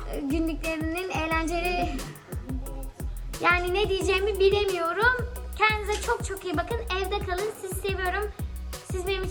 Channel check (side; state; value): both; identical; correlation 1.00